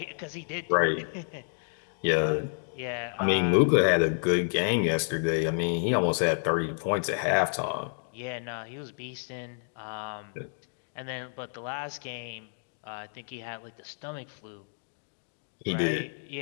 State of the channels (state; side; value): silent; right; digital silence